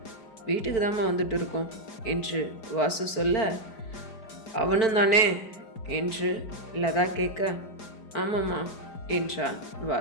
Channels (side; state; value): right; late; 4.5 ms